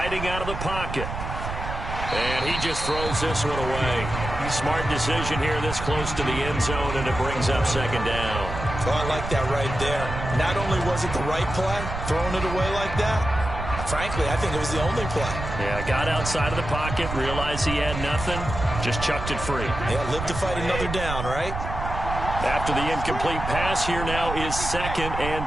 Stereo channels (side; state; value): right; noise; rumble, 6 dB below the sound